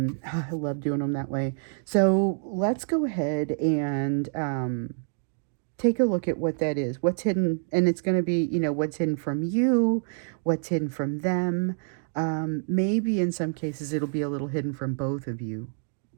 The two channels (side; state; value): left; silent; digital silence